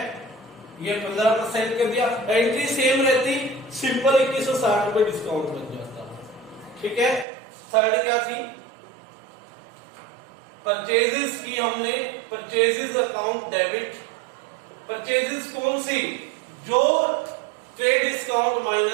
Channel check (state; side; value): drops out; left; at 7.2 s